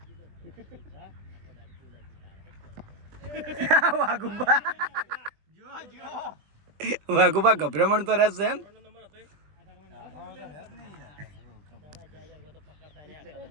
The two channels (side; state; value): left; late; 20 ms